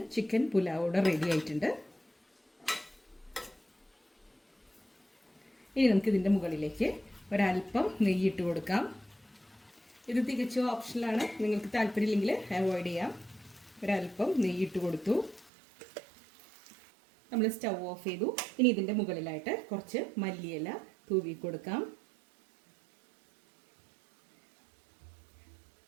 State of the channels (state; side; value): drops out; left; at 15.5 s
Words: ചിക്കൻ പുലാവോടെ റെഡി ആയിട്ടുണ്ട്. ഇനി നമുക്ക് ഇതിൻ്റെ മുകളിലേക്ക് ഒരല്പം നെയ്യിട്ട് കൊടുക്കാം. ഇത് തികച്ചും ഓപ്ഷനിലാണ്, നിങ്ങൾക്ക് താല്പര്യമില്ലെങ്കിൽ അവോയ്ഡ് ചെയ്യാം. ഒരല്പം നെയ്യിട്ട് കൊടുത്തു. നമ്മൾ സ്റ്റൗ ഓഫ് ചെയ്തു. ഇനി ഇതിൻ്റെ മുകളിലായിട്ട് കുറച്ച് മല്ലിയില തൂവി കൊടുക്കാം.